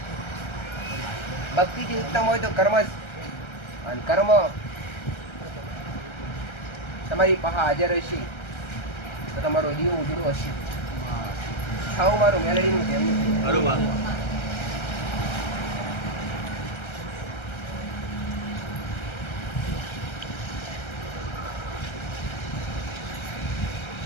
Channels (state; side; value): late; right; 1.3 ms